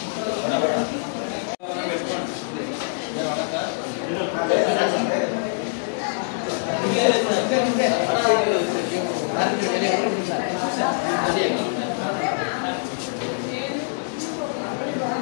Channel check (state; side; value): silent; right; digital silence